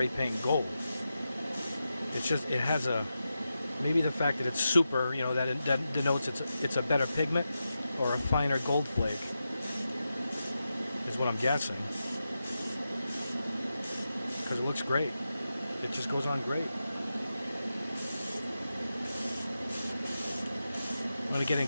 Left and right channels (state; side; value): inverted; both; correlation -0.90